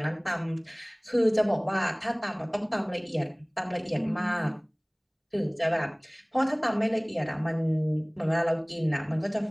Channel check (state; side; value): identical; both; correlation 1.00